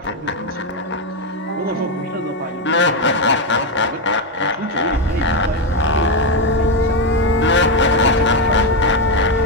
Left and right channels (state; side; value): normal; both; correlation 0.06